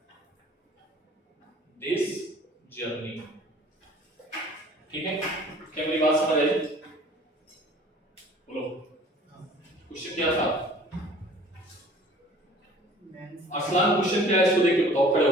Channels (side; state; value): both; normal; correlation 0.50